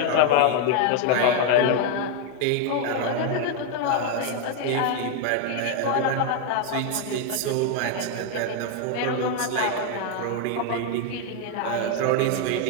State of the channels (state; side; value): different; both; correlation 0.00